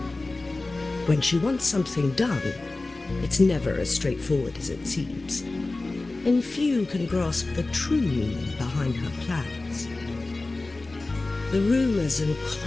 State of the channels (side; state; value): right; quieter; 3.2 dB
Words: When she wants something done, it's never as straightforward as it seems, and few can grasp the true meaning behind her plans. The rumors and